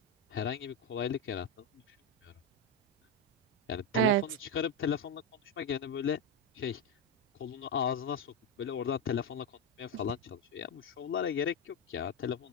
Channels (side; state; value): both; normal; correlation 0.07